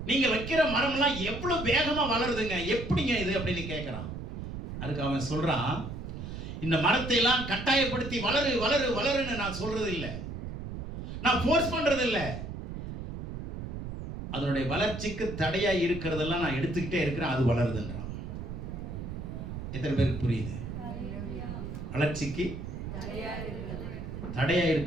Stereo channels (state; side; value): noise; right; rumble, 7 dB below the sound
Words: நீங்க வைக்கிற மரம்லாம் எவ்வளவு வேகமா வளருதுங்க, எப்படிங்க இது அப்படின்னு கேட்கிறான். அதுக்கு அவன் சொல்றான், இந்த மரத்தை எல்லாம் கட்டாயப்படுத்தி வளரு வளரு வளருன்னு நான் சொல்றது இல்லை, நான் ஃபோர்ஸ் பண்றது இல்லை. அதனுடைய வளர்ச்சிக்கு தடையா இருக்கிறதெல்லாம் நான் எடுத்துக்கிட்டே இருக்கிறேன், அது வளருதுன்றான். எத்தனை பேருக்கு புரியுது? வளர்ச்சிக்கு தடையா